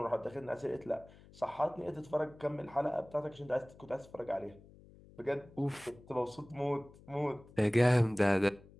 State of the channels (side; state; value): left; noise; hum, 23 dB below the sound